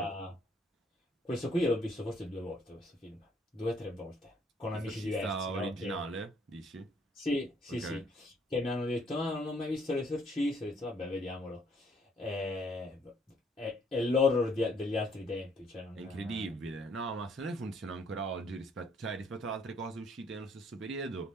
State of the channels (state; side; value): normal; both; correlation 0.66